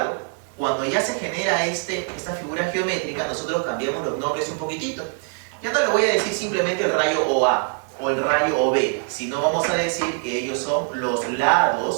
cuando ya se genera esta figura geométrica, nosotros cambiamos los nombres un poquitito. Ya no le voy a decir simplemente el rayo OA o el rayo OB, sino vamos a decir que ellos son los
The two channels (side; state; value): left; quieter; 39.6 dB